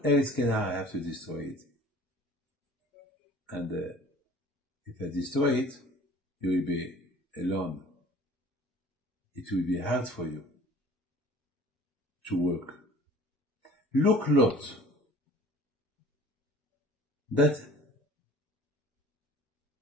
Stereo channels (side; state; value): both; normal; correlation 0.48